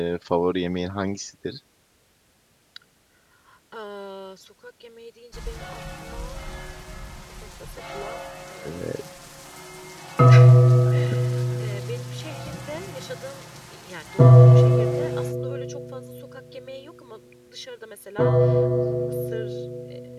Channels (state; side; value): identical; both; correlation 1.00